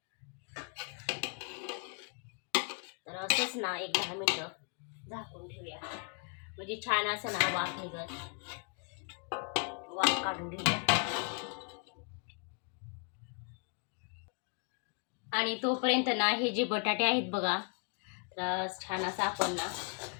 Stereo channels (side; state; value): right; quieter; 38.4 dB